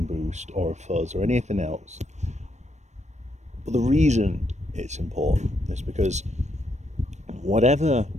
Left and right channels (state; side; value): late; left; 0.34 ms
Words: boost or a fuzz or anything else. But the reason it's important is because whatever